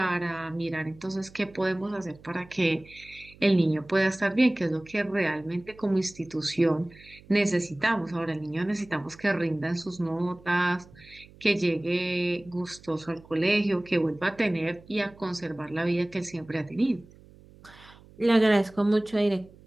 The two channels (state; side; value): noise; right; hum, 23 dB below the sound